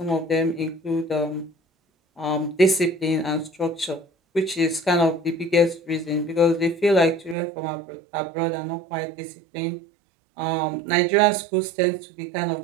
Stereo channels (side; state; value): left; drops out; at 7.4 s